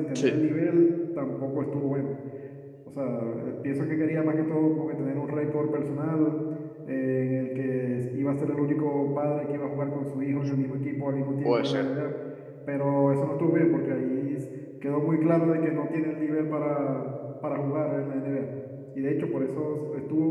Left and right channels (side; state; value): both; identical; correlation 1.00